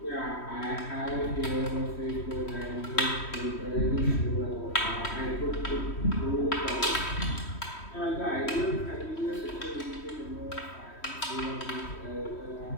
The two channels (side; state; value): right; late; 3.1 ms